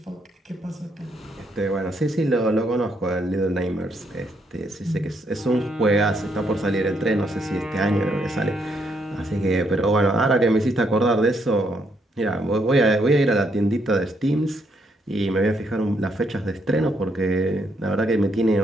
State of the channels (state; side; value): normal; both; correlation 0.74